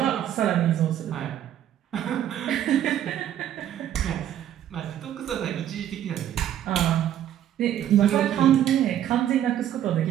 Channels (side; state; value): left; quieter; 11.0 dB